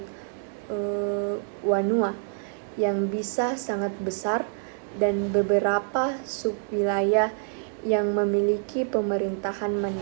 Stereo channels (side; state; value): left; silent; digital silence